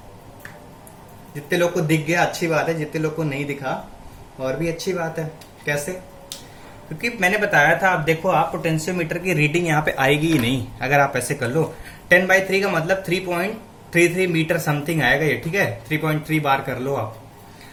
जितने लोग को दिख गया अच्छी बात है, जितने लोग को नहीं दिखा और भी अच्छी बात है। कैसे? क्योंकि मैंने बताया था, आप देखो, आप पोटेंशियोमीटर की रीडिंग यहाँ पे आएगी ही नहीं अगर आप ऐसे कर लो। 10 बाई 3 का मतलब 3.33 मीटर समथिंग आएगा ये, ठीक है। 3.3 बार कर लो आप।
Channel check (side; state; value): both; identical; correlation 1.00